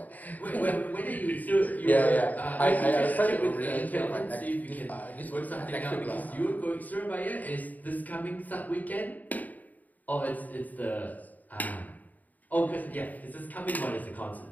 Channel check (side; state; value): right; late; 0.079 ms